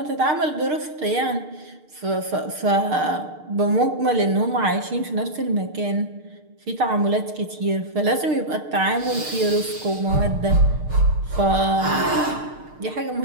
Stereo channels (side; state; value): left; late; 6.6 ms